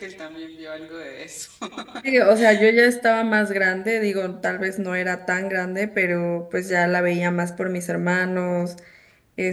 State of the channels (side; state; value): both; identical; correlation 1.00